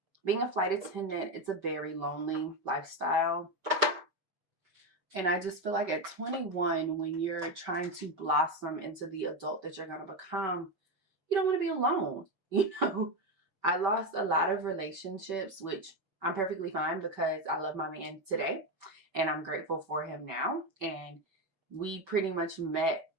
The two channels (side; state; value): left; late; 5.1 ms